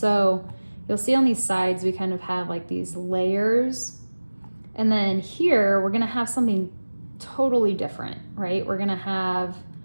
you'll see on these sides, we kind of have like these layers, And then here, we're gonna have something totally different, right? We're gonna have,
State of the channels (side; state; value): both; inverted; correlation -1.00